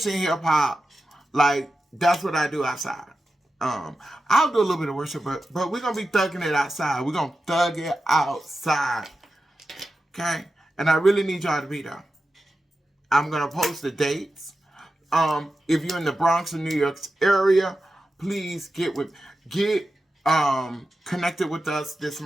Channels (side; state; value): both; normal; correlation 0.91